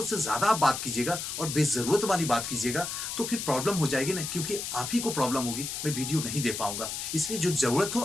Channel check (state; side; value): noise; left; hiss, 5 dB below the sound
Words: से ज्यादा आप बात कीजिएगा और बेजरूरत वाली बात कीजिएगा तो फिर प्रॉब्लम हो जाएगी ना, क्योंकि आप ही को प्रॉब्लम होगी, मैं वीडियो नहीं दे पाऊंगा। इसलिए जो जरूरत हो